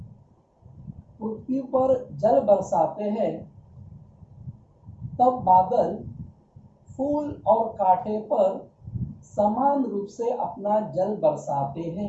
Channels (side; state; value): both; identical; correlation 1.00